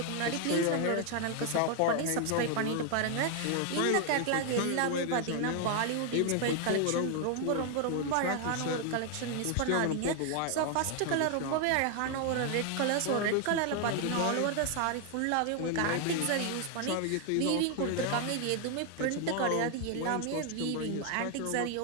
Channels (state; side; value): different; both; correlation 0.00